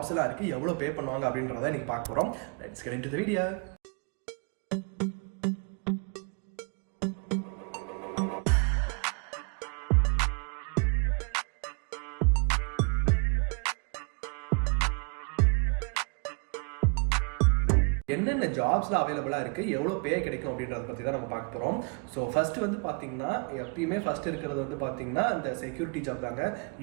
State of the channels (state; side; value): quieter; left; 34.8 dB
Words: எல்லாம் இருக்கு, எவ்வளோ பே பண்ணுவாங்க அப்படின்றத இன்னைக்கு பார்க்க போறோம். Let's get into the video. என்னென்ன ஜாப்ஸ்ல அவைலபிளா இருக்கு, எவ்வளோ பே கிடைக்கும் அப்படின்றத பத்தி தான் நம்ம பார்க்க போறோம். ஸோ ஃபர்ஸ்ட் வந்து பாத்தீங்கன்னா எப்பயுமே ஃபர்ஸ்ட் இருக்கிறது வந்து பாத்தீங்கன்னா இந்த செக்யூரிட்டி ஜாப் தாங்க.